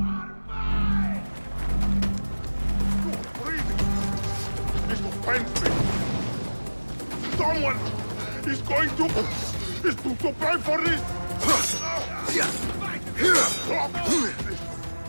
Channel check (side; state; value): both; inverted; correlation -1.00